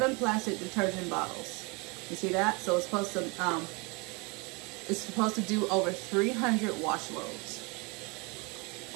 plastic detergent bottles. You see that? So it's supposed to do over 300 wash loads.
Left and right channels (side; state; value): left; quieter; 29.0 dB